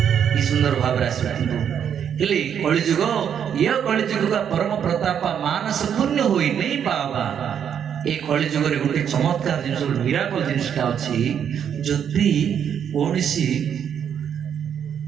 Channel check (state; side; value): quieter; left; 8.4 dB